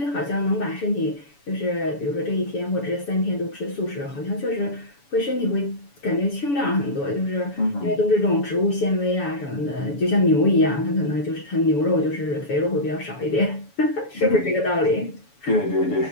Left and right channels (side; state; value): right; late; 7.0 ms